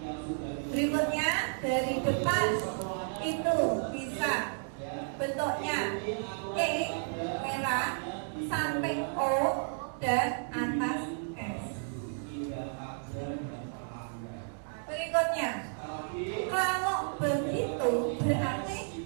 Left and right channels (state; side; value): silent; left; digital silence